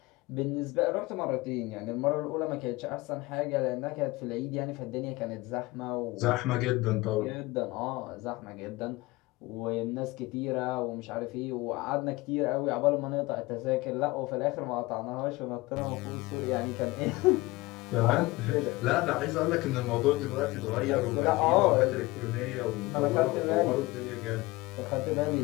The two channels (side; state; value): right; quieter; 21.2 dB